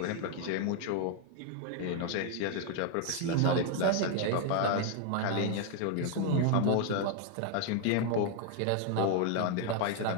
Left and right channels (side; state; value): both; different; correlation 0.00